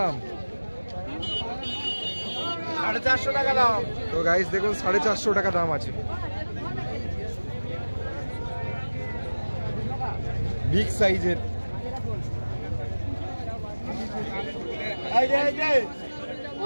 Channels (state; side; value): inverted; both; correlation -1.00